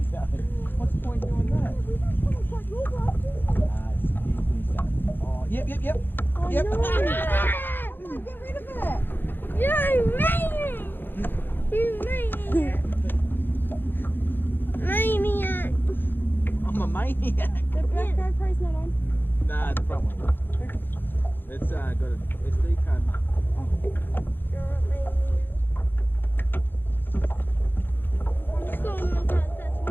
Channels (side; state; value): right; late; 0.097 ms